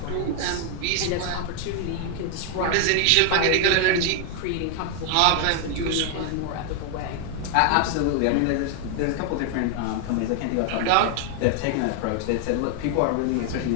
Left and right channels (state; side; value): different; both; correlation 0.00